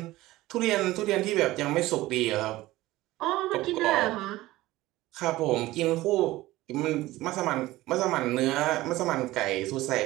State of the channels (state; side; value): quieter; left; 17.6 dB